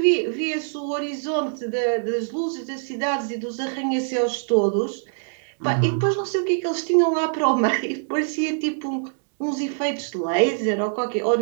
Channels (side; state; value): left; silent; digital silence